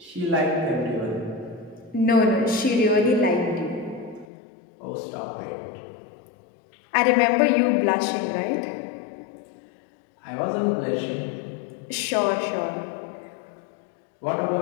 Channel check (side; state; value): right; drops out; at 4.2 s